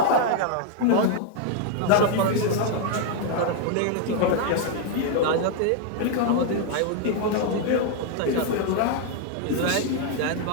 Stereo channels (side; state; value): both; different; correlation 0.00